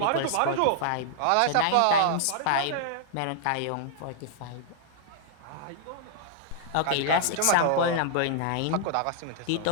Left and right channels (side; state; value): both; different; correlation -0.01